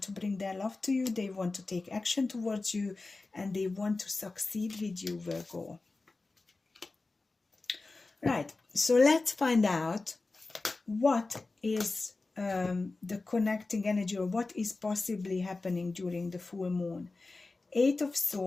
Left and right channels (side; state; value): right; quieter; 3.5 dB